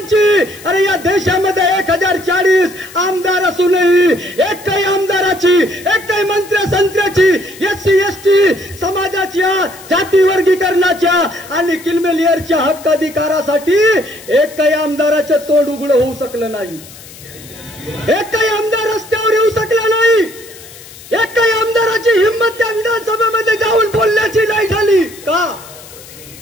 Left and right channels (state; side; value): noise; left; hiss, 19 dB below the sound